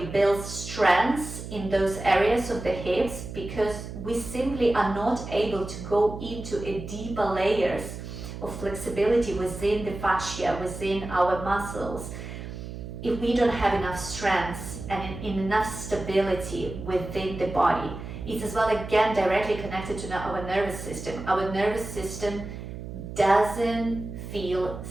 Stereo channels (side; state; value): right; noise; hum, 9 dB below the sound